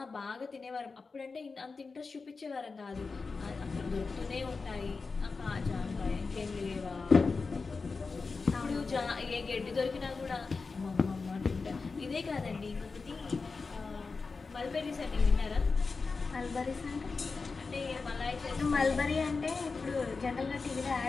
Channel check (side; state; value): right; quieter; 4.4 dB